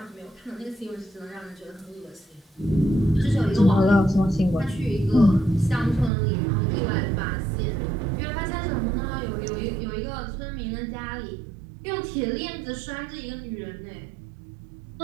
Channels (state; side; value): drops out; left; at 6.1 s